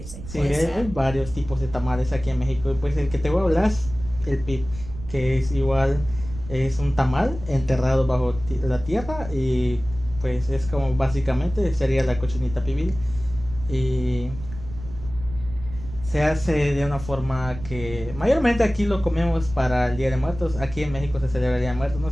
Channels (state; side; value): noise; right; rumble, 12 dB below the sound